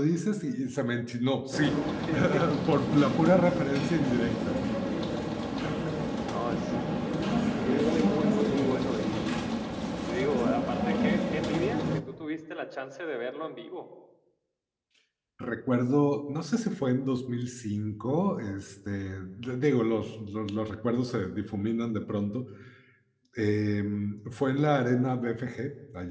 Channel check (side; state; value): both; identical; correlation 1.00